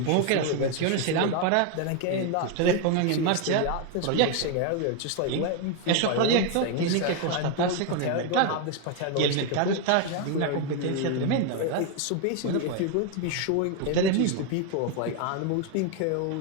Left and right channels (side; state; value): both; different; correlation 0.01